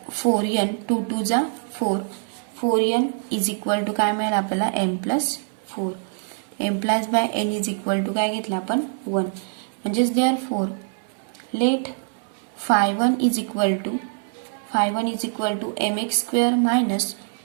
4n 2 2 जा 4n इज इक्वल टू काय मिळेल आपल्याला m plus 4 m plus by n is equal to काय घेतलं आपण 1 म्हणजेच therefore let phi1 is equal to mx square minus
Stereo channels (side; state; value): left; silent; 63 dB below the other